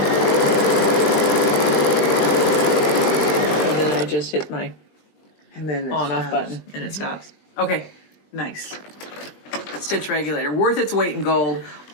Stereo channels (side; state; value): right; late; 20 ms